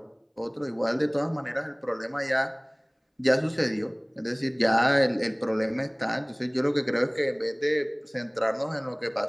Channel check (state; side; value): identical; both; correlation 1.00